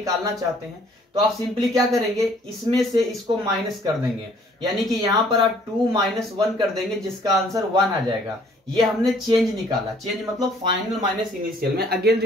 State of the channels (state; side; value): normal; both; correlation 0.59